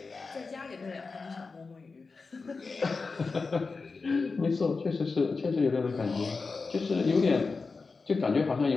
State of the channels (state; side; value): quieter; right; 4.3 dB